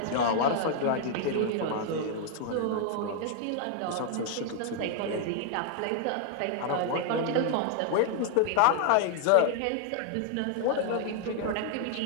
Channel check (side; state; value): both; different; correlation 0.00